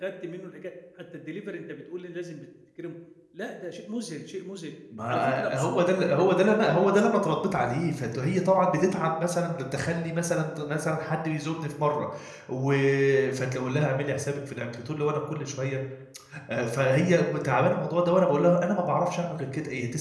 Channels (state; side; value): identical; both; correlation 1.00